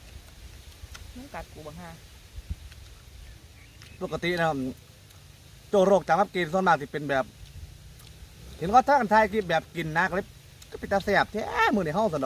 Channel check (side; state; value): both; identical; correlation 1.00